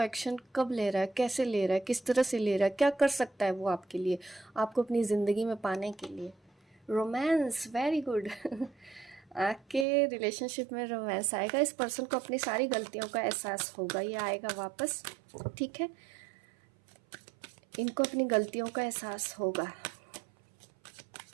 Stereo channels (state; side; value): drops out; left; at 9.9 s